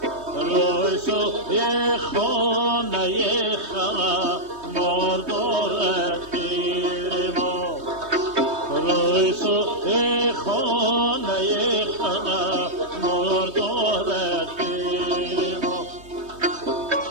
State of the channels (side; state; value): left; late; 3.2 ms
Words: رای سوی خانه خما مردارد گیر ما رای سوی خانه خما مردارد گیر ما